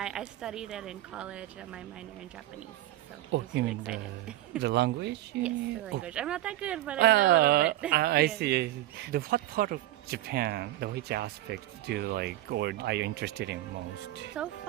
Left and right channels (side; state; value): left; quieter; 15.1 dB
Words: studied it in college, my minor in Japanese. So you mean the language? Yes, the language. I'm not that good, but I know a little bit. I see. What part of Japan, which aspect do you like, or are you interested in most? So